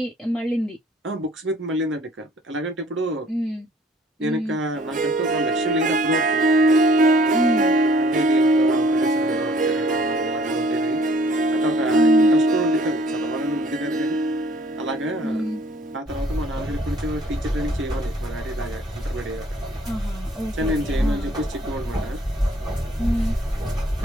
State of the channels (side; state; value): both; normal; correlation 0.58